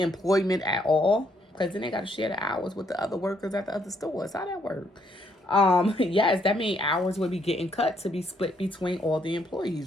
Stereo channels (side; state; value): both; normal; correlation 0.72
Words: employment at all? Because then they got to share the hours with the other workers at the other stores. How that work? Yes, that means hours would be getting cut to be split between all the